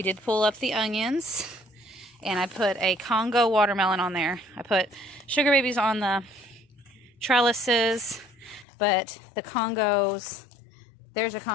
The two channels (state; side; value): drops out; right; at 8.7 s